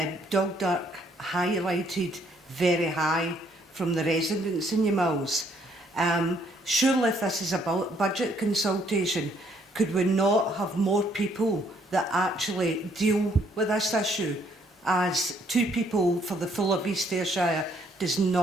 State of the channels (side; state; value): both; normal; correlation 0.67